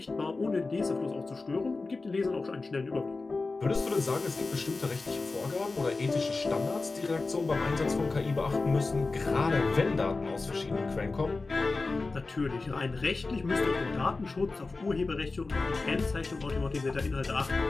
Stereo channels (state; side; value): quieter; right; 3.7 dB